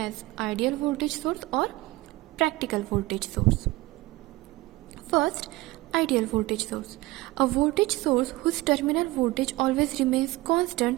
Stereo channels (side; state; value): left; quieter; 19.8 dB